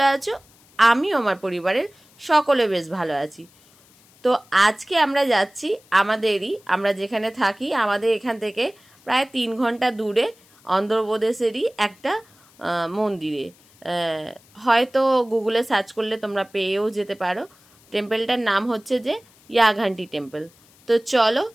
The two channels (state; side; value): noise; left; hiss, 29 dB below the sound